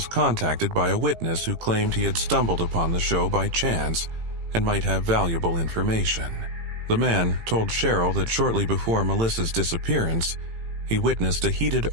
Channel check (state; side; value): late; left; 18 ms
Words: contacted by a witness who claimed he had stumbled upon the show by chance and might have valuable information. The man told Cheryl that shortly before Melissa's disappearance, he witnessed a heated